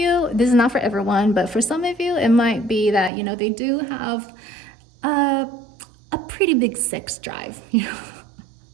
this is not for everyone, but for some of you, it might be that, they do have a pretty big sex drive,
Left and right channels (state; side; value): drops out; left; at 3.1 s